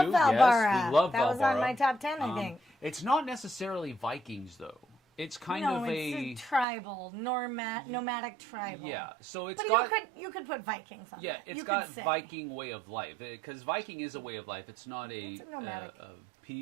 too. Valbara. Yes, we love Valbara. That was on my top 10, I think. It's not necessarily Vikings though. It's kind of it's tribal, nomadic tribal. Yeah, so it's you could put Vikings on. Yeah, it's got Viking way of life, because Viking is a way of life. It's not it's a nomadic.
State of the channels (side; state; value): left; drops out; at 6.7 s